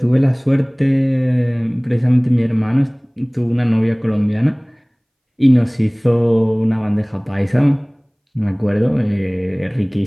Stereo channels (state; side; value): identical; both; correlation 1.00